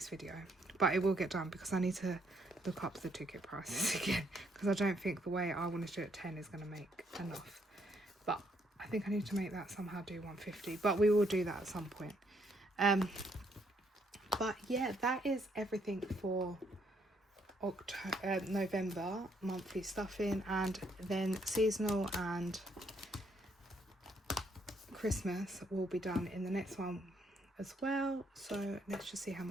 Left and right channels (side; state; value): both; normal; correlation 0.71